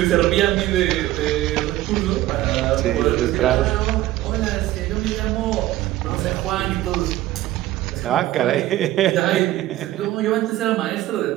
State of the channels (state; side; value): quieter; left; 15.3 dB